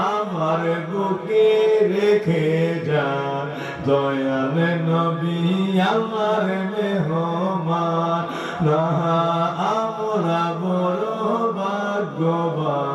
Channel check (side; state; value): both; identical; correlation 1.00